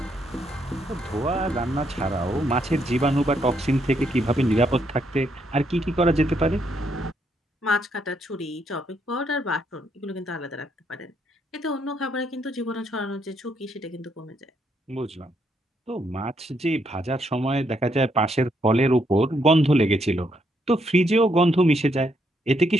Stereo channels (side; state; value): both; normal; correlation 0.75